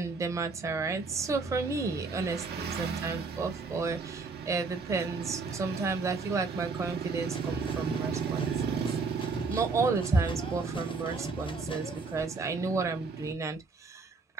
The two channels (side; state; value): left; quieter; 4.1 dB